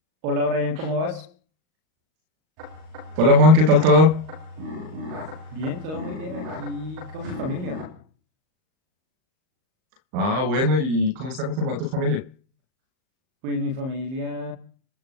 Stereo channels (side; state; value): left; late; 38 ms